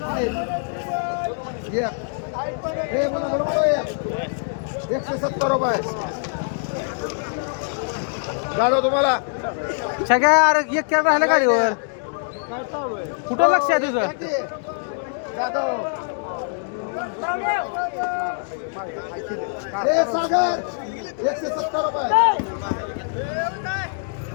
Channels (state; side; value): silent; right; digital silence